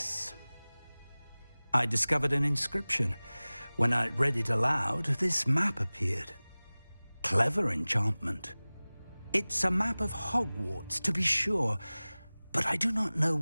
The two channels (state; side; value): inverted; both; correlation -0.99